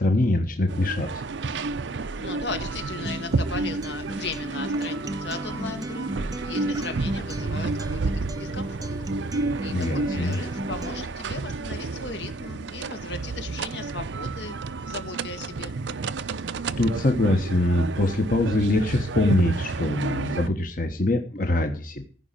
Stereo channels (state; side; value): normal; both; correlation 0.63